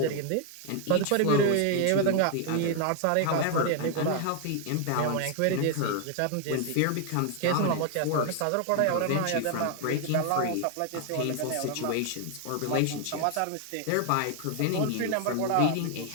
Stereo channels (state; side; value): different; both; correlation 0.00